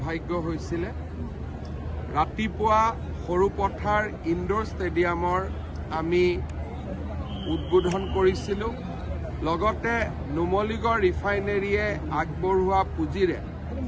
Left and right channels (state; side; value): identical; both; correlation 1.00